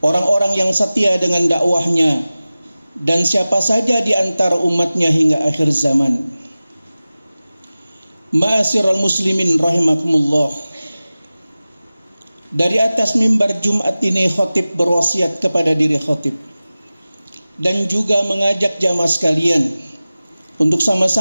yang setia dengan dakwahnya, dan siapa saja di antara umatnya hingga akhir zaman. Ma'asyiral muslimin rahimakumullah. Dari atas mimbar Jumat ini khatib berwasiat kepada diri khatib dan juga mengajak jamaah sekalian untuk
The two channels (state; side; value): inverted; both; correlation -0.97